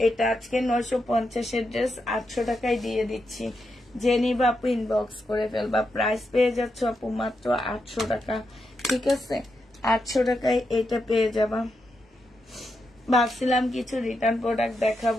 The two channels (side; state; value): both; normal; correlation 0.85